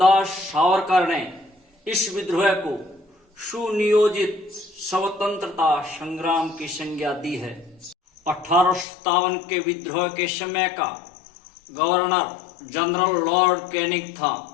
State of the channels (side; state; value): right; drops out; at 8.8 s